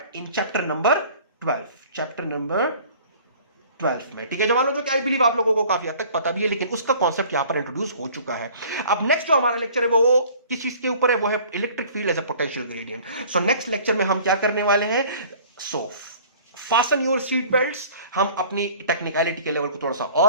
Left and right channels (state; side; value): inverted; both; correlation -0.49